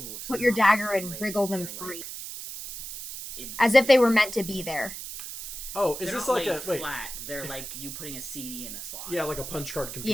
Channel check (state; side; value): noise; right; hiss, 9 dB below the sound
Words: So put your not dagger and laid, wriggle them they're, free, like, as if they were meant to be there. Oh, is They're this not like laid a wait? flat. They're like you putting a CD in a slot. Yeah, like a punch card